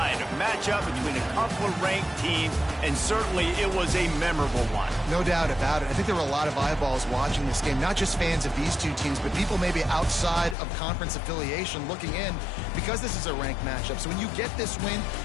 A matchup between a couple of ranked teams, and certainly it was a memorable one. No doubt about it. I think there were a lot of eyeballs watching this game, not just fans of these two teams, but people maybe outside of conference affiliation looking in because this is a ranked matchup. So when you get this win,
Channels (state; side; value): drops out; right; at 10.6 s